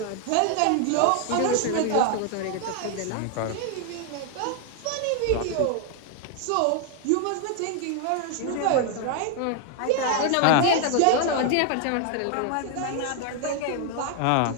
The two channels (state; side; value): different; both; correlation 0.00